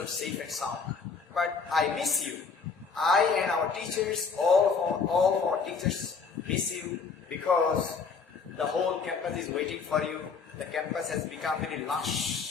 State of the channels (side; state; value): right; quieter; 5.3 dB